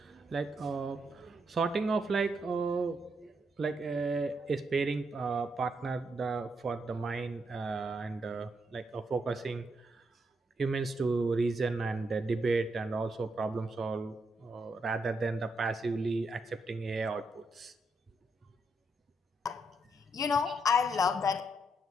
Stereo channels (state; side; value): normal; both; correlation 0.79